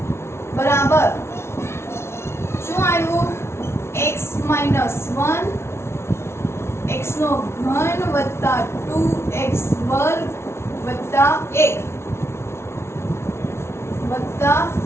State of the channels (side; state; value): right; late; 0.12 ms